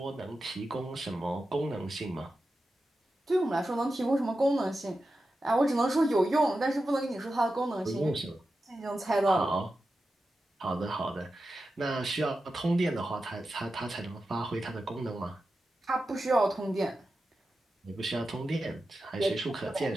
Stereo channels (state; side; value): normal; both; correlation 0.91